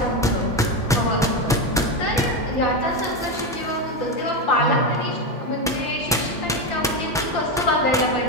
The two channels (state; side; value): normal; both; correlation 0.13